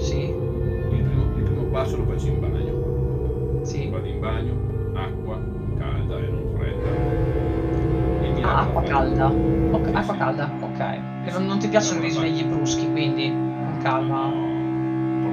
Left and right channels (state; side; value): identical; both; correlation 1.00